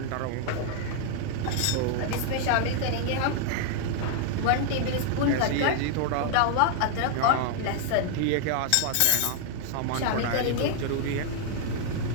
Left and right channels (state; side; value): different; both; correlation 0.00